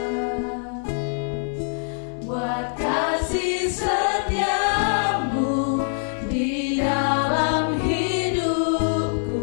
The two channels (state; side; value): silent; right; digital silence